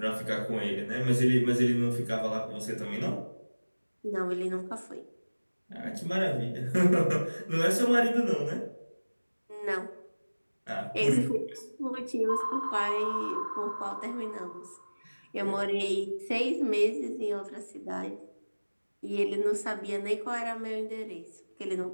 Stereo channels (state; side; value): inverted; both; correlation -1.00